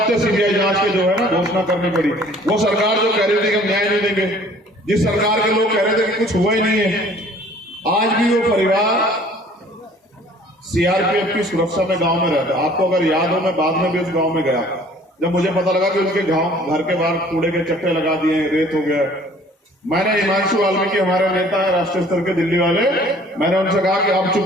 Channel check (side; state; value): both; normal; correlation 0.53